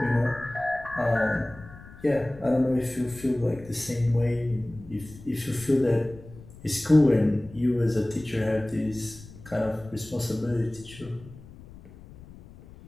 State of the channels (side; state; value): left; noise; rumble, 19 dB below the sound